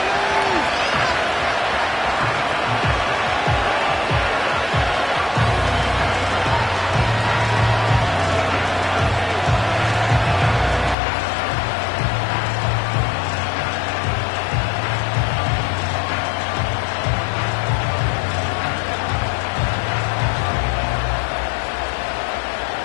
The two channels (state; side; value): drops out; right; at 11.0 s